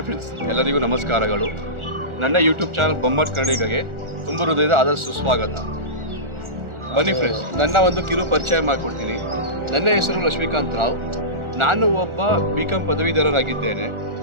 friends, ಎಲ್ಲರಿಗೂ ನಮಸ್ಕಾರಗಳು. ನನ್ನ ಯೂಟ್ಯೂಬ್ ಚಾನಲ್ ಬೊಂಬಾಟ್ ಕನ್ನಡಿಗಗೆ ತುಂಬ ಹೃದಯದ ಆದಷ್ಟು ಸ್ವಾಗತ. ಬನ್ನಿ ಫ್ರೆಂಡ್ಸ್, ನನ್ನ ಒಂದು ಕಿರು ಪರಿಚಯ ಮಾಡಿಕೊಡ್ತೀನಿ. ನನ್ನ ಹೆಸರು ಲಕ್ಷ್ಮೀಕಾಂತ್ ರಾವ್. ನಾನು ಒಬ್ಬ BCom ಪದವೀಧರರಾಗಿದ್ದೇನೆ.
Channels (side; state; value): left; late; 1.4 ms